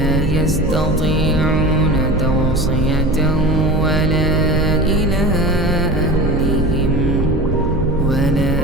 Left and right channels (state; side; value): noise; right; hum, 4 dB below the sound